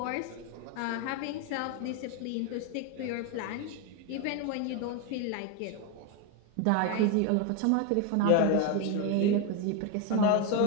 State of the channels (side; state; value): both; different; correlation 0.02